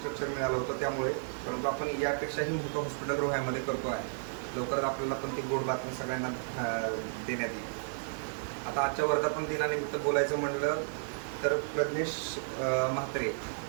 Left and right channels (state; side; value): silent; left; digital silence